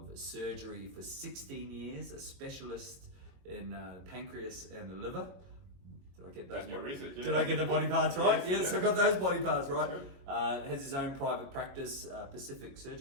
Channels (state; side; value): late; left; 22 ms